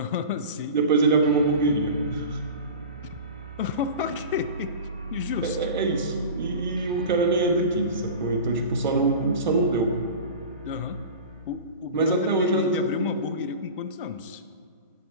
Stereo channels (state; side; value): inverted; both; correlation -0.34